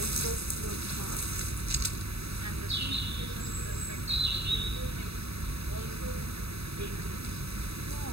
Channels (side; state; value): left; late; 0.78 ms